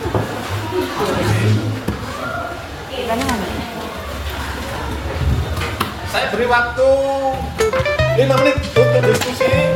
Saya beri waktu 5 menit untuk diskusi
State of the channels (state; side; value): identical; both; correlation 1.00